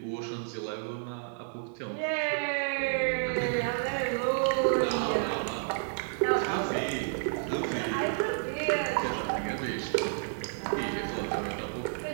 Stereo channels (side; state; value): left; silent; 57 dB below the other